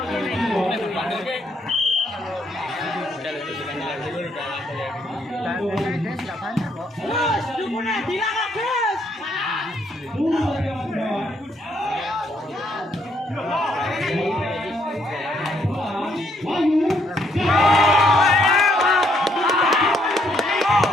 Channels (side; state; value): both; normal; correlation 0.72